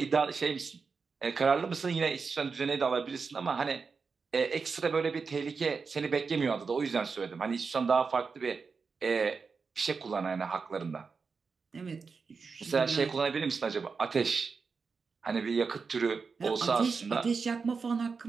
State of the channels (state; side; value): quieter; left; 5.0 dB